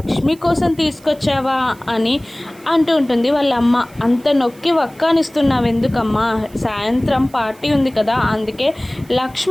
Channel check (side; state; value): right; noise; hiss, 26 dB below the sound